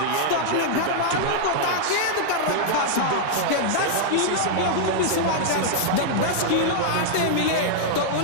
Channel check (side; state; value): both; different; correlation -0.01